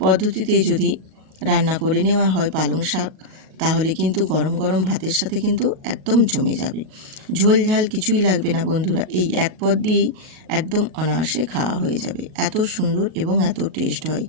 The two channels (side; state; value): left; late; 38 ms